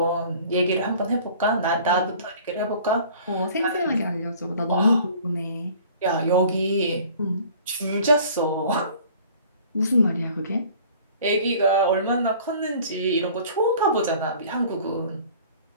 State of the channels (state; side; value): inverted; both; correlation -0.49